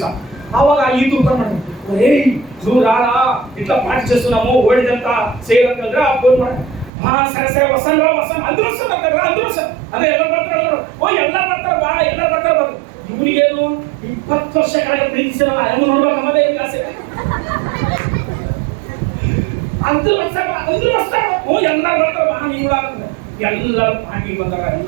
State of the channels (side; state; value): left; drops out; at 6.9 s